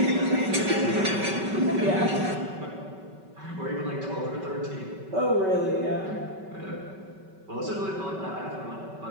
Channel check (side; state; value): left; late; 5.2 ms